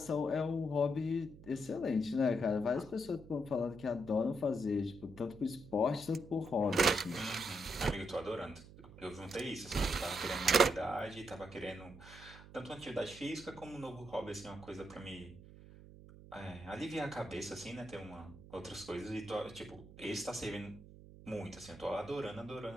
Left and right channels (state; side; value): noise; right; hum, 18 dB below the sound